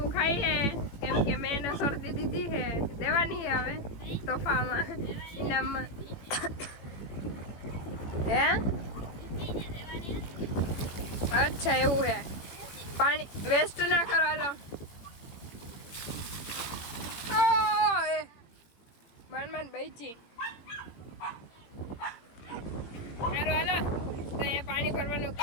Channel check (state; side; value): late; right; 18 ms